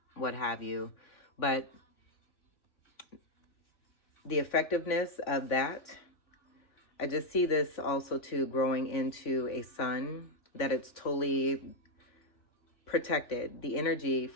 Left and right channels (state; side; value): late; right; 3.6 ms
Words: what have you. But the effectiveness of that, I just see this also too growing into a sun, that it's totally protected. The energy